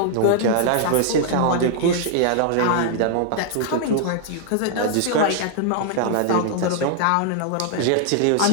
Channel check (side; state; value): both; different; correlation -0.01